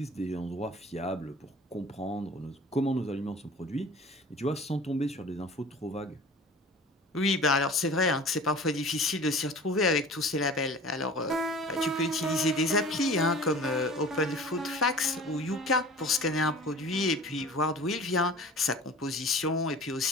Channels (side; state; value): both; normal; correlation 0.42